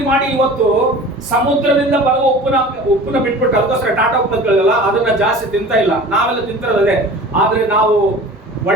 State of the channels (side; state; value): both; normal; correlation 0.40